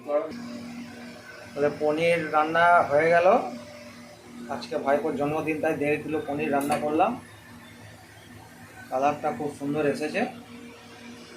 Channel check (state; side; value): identical; both; correlation 1.00